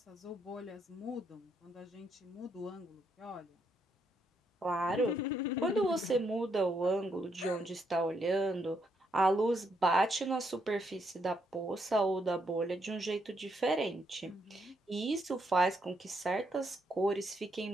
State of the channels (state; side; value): normal; both; correlation 0.76